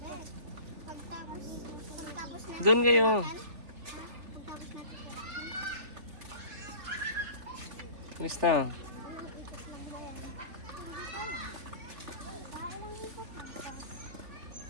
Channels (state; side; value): late; left; 3.4 ms